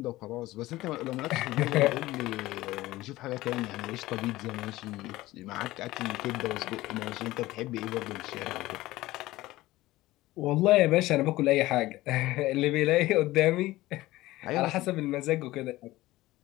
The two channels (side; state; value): right; quieter; 17.6 dB